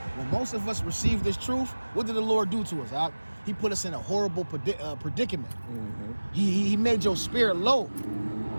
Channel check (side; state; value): both; inverted; correlation -1.00